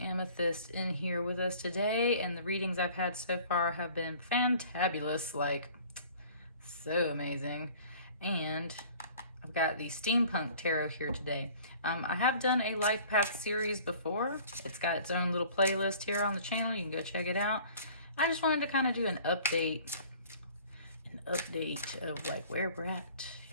in here with us today, and the readings I've had so far have been fantabulous, like so amazing. And I've got the Steampunk Tarot here today. I have done a life path series before. It's got its own little playlist here on the channel. You can go check it out. I just wanted to kind of do an update of like where we're at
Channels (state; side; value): inverted; both; correlation -0.49